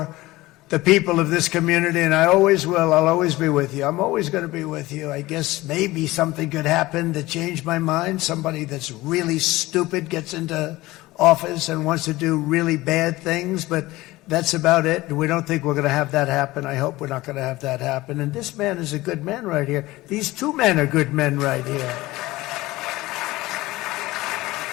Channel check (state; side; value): quieter; right; 18.9 dB